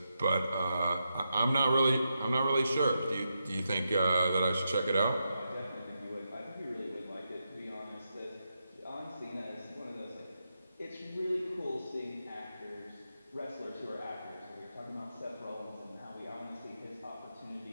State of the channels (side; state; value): both; inverted; correlation -0.85